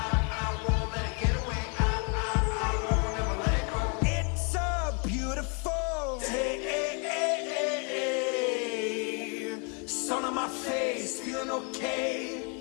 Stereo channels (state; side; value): quieter; right; 36.4 dB